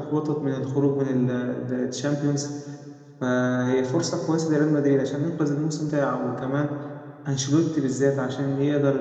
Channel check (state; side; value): identical; both; correlation 1.00